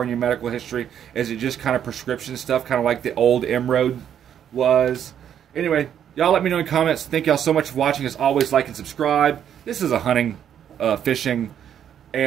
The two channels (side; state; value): left; quieter; 9.4 dB